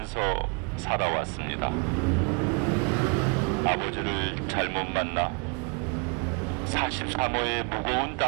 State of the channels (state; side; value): quieter; left; 35.0 dB